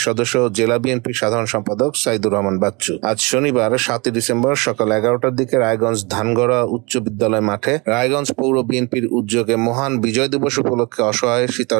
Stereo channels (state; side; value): quieter; left; 27.9 dB